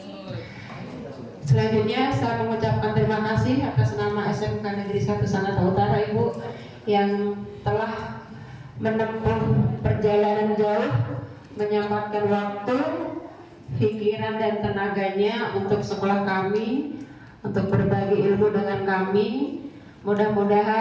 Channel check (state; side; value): identical; both; correlation 1.00